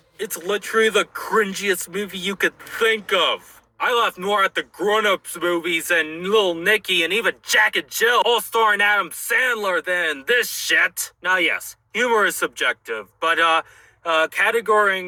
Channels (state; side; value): identical; both; correlation 1.00